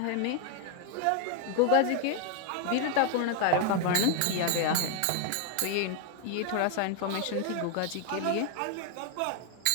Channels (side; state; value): both; different; correlation 0.00